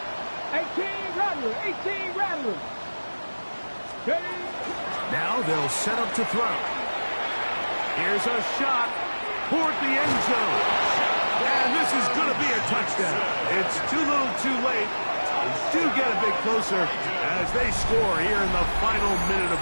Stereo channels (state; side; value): inverted; both; correlation -1.00